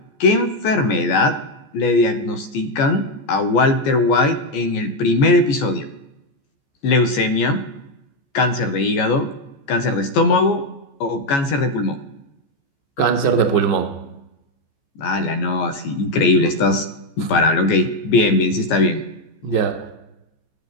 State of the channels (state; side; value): late; right; 14 ms